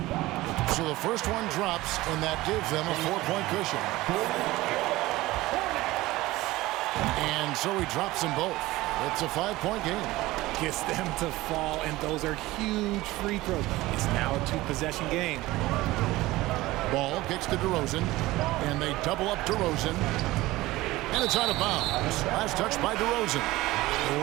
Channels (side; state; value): left; quieter; 18.5 dB